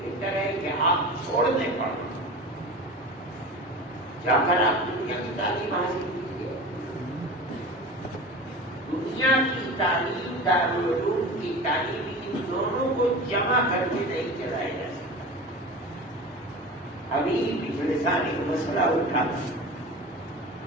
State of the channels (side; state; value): both; normal; correlation 0.33